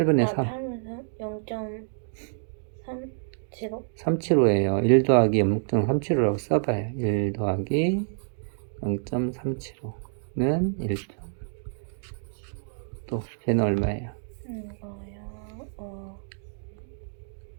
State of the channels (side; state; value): left; silent; digital silence